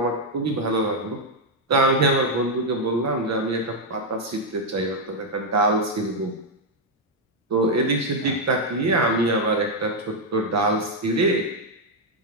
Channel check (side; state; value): both; normal; correlation 0.00